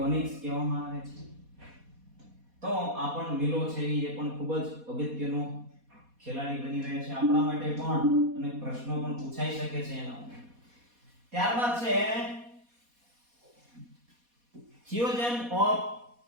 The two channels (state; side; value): late; left; 4.2 ms